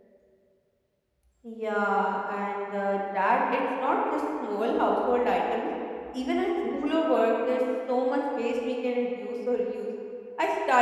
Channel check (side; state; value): both; identical; correlation 1.00